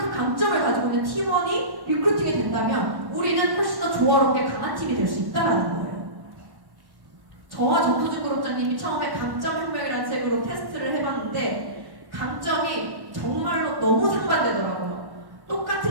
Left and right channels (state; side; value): late; left; 1.1 ms